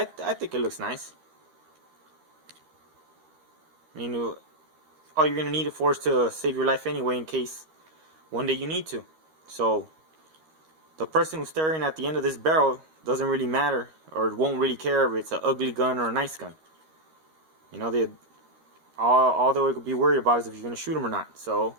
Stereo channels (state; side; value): late; left; 13 ms